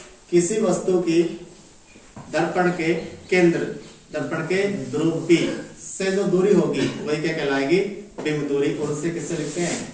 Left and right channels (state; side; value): identical; both; correlation 1.00